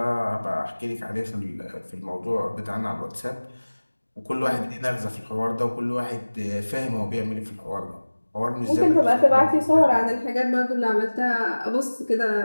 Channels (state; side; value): inverted; both; correlation -1.00